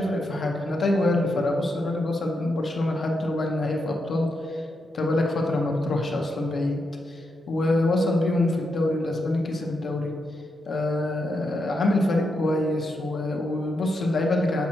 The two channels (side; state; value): both; normal; correlation 0.83